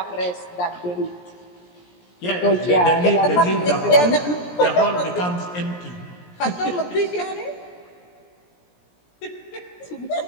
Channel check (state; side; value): late; right; 17 ms